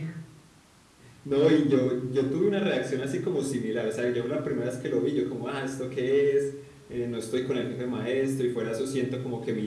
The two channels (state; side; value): identical; both; correlation 1.00